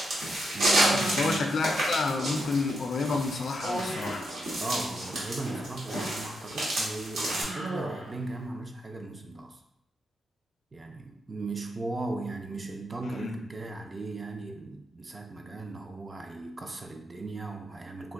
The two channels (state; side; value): normal; both; correlation 0.82